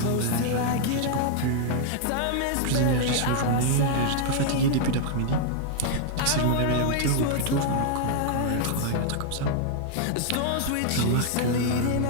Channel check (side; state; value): both; different; correlation -0.01